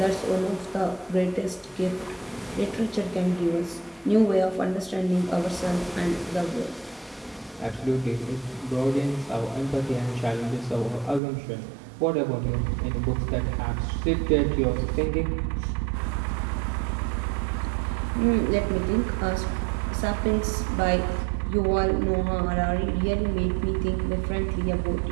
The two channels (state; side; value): drops out; left; at 11.2 s